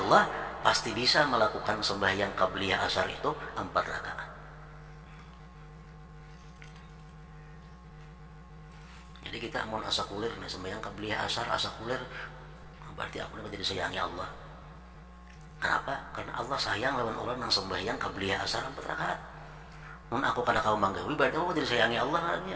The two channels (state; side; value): identical; both; correlation 1.00